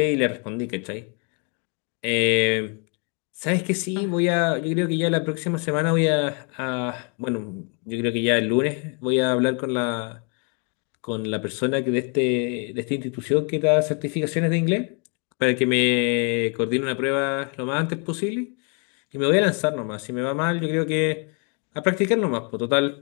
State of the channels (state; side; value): quieter; right; 37.3 dB